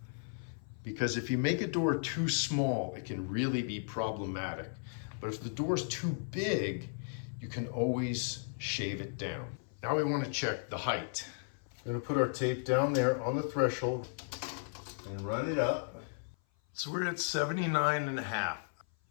Because if you make a door too small, it can really be problematic. But if the door is too big, you can always shave it down. Now we want to check the height. We're going to put our tape down there on the threshold and run it up. So we're at 79.5.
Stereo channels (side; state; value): right; silent; 54 dB below the other